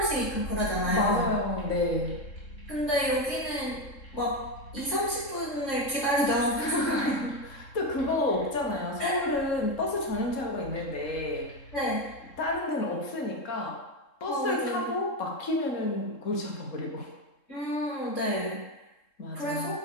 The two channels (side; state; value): right; late; 3.7 ms